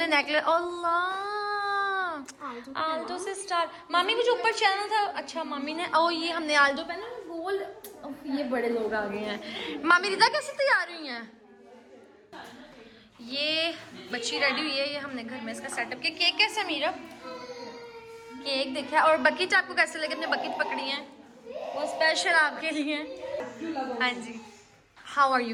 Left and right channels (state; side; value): identical; both; correlation 1.00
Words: नेकलेस, अल्लाह आल्टो से स्टार। मामी को जो ऊपर चैनल था, अच्छा मामी ने, ओ ये हमने आल्टो पहना गोल्ड। ये बड़े लोग आ गए हैं। मामी रिदा कैसे तैयार हुई हैं? ये बच्ची रेडी हुई है, ये हमने घर में इसका सेटअप किया। केक कैसा मीरब? केक देखा। और बकेट आपको कैसे लगे? अपने बकेट पकड़ी है वो स्पेशल आपके लिए। हाँ जी, how are you